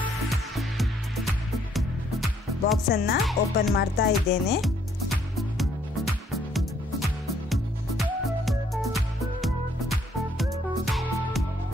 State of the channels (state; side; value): normal; both; correlation 0.66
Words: ಬಾಕ್ಸನ್ನು ಓಪನ್ ಮಾಡ್ತಾ ಇದ್ದೇನೆ.